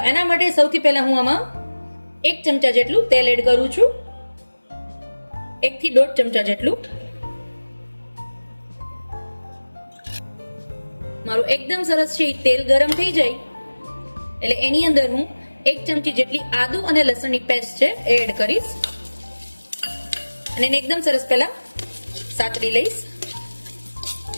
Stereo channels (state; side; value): inverted; both; correlation -1.00